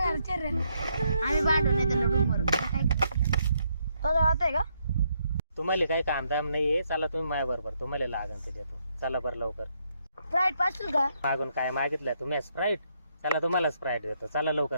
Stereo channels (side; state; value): both; inverted; correlation -0.75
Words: घरचे रे आम्ही भांडवले त्याला रूमवर काय तुझं आहे का तुम्हाला काही काम दाम नाहीये चला तुम्ही माझ्या बरोबर तुम्हाला लागन ते देतो चला बरं लवकर फ्लाईट पाशील का मागून काय मागितलं तुम्ही स्प्राईट चला तुम्हाला स्प्राईट देतो चला